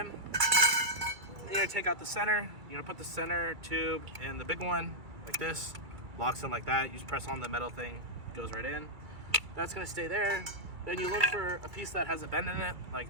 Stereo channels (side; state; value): left; late; 2.3 ms